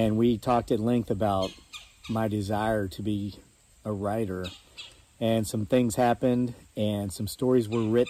we talked at length about my desire to be a writer. And some things happened, and some stories were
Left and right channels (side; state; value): both; identical; correlation 1.00